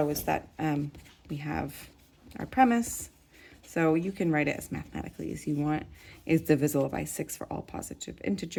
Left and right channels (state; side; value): identical; both; correlation 1.00